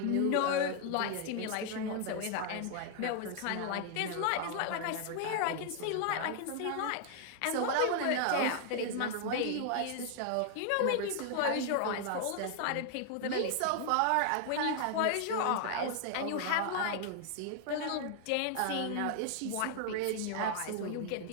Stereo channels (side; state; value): both; different; correlation 0.00